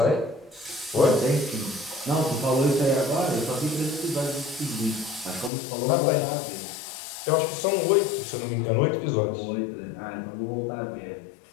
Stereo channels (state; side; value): drops out; right; at 5.5 s